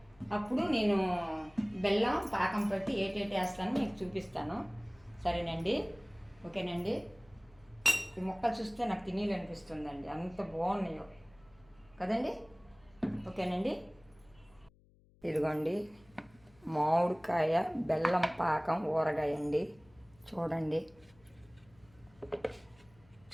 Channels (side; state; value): left; noise; hum, 29 dB below the sound